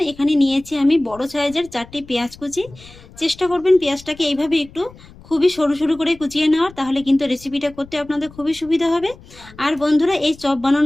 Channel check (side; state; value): left; noise; rumble, 22 dB below the sound